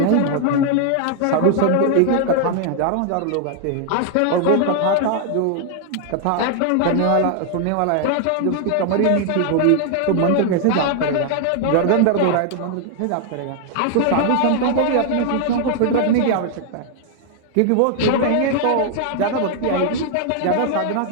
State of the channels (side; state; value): both; different; correlation 0.00